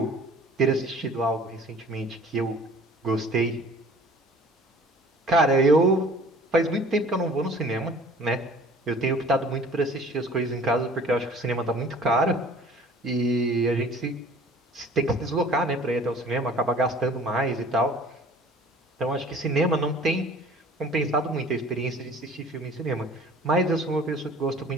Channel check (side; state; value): both; normal; correlation 0.49